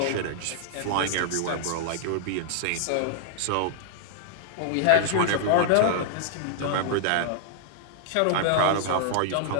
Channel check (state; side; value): different; both; correlation -0.01